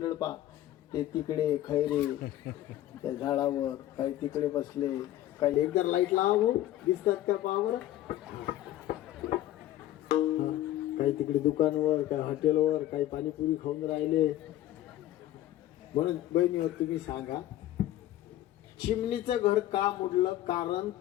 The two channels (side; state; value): right; quieter; 13.9 dB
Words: पा, ते तिकडे खैरे त्या झाडावर, काही तिकडे बसले, काही एकदा लाईट लावा भाऊ, दिसतात का पहा बरं. काही तिकडे दुकानवर, काही हॉटेलवर, काही पाणीपुरी खाऊन राहिले. म्हणून बहिणी तुम्ही सांगा, चिमणीचं घर का मोडलं? कारण